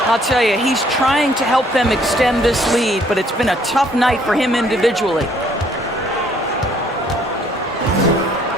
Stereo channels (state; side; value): normal; both; correlation 0.63